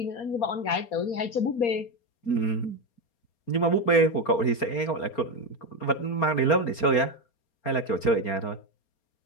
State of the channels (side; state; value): right; late; 4.3 ms